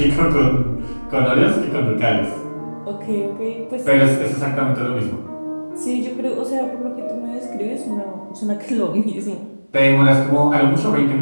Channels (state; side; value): inverted; both; correlation -1.00